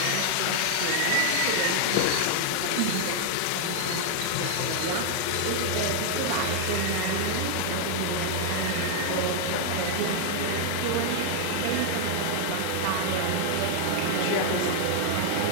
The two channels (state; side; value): different; both; correlation 0.00